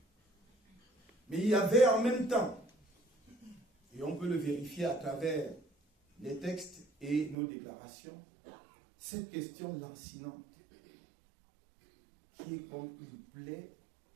Mais il y avait en même temps, et on peut le vérifier à travers les textes et nos déclarations, cette question lancinante, qui est comme une plaie,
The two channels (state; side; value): drops out; left; at 7.4 s